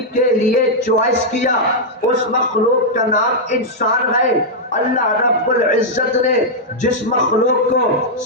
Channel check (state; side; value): normal; both; correlation -0.05